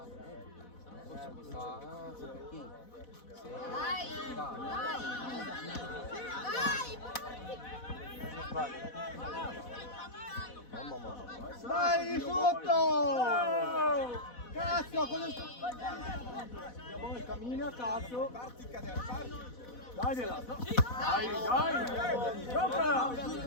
Dai, sotto! Cazzo, cosa sta? Cammina, cazzo. Parti, cadere, parti. Dagliela! Dai, dai! Giocala!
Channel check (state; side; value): late; right; 4.1 ms